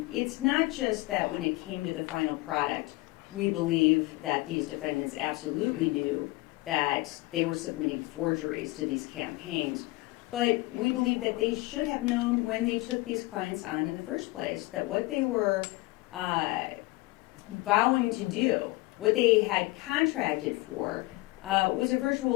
It's not just that when it came to the final product, we believe that these defendants absolutely knew that they were submitting forgeries to these campaigns, but we believe that they should have known when they took these clients on in the first place that what they were vowing to do, what they had contracted for, was a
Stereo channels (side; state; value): right; quieter; 21.5 dB